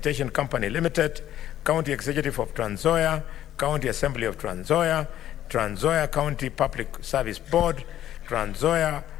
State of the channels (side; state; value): right; quieter; 12.0 dB